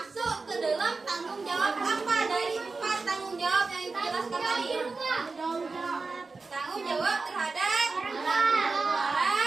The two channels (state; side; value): quieter; left; 4.0 dB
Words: ke dalam tanggung jawab apa dari 4 tanggung jawab yang ibu jelaskan tadi? Tanggung jawab terhadap